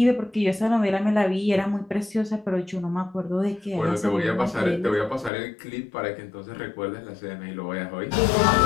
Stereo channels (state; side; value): drops out; right; at 5.3 s